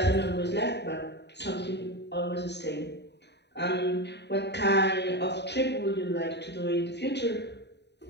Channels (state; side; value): late; right; 0.50 ms